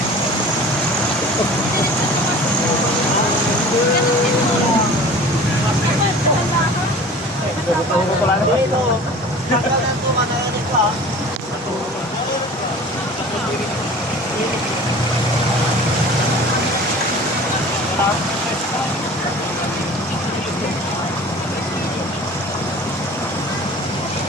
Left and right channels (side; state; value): both; normal; correlation 0.42